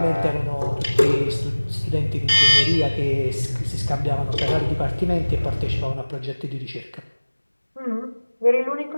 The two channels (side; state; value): both; inverted; correlation -1.00